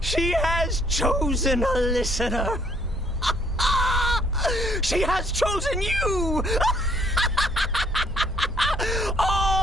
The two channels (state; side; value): normal; both; correlation 0.64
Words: She has chosen a listener. She has chosen you!